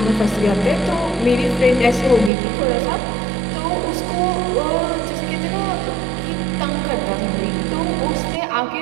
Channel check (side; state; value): left; drops out; at 2.3 s